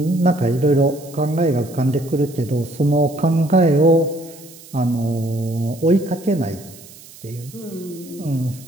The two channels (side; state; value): right; noise; hiss, 20 dB below the sound